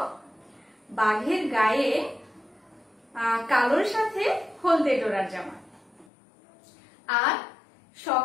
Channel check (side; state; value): right; drops out; at 6.1 s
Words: বাঘের গায়ে কালোর সাথে হলদে ডোরার জামা। আর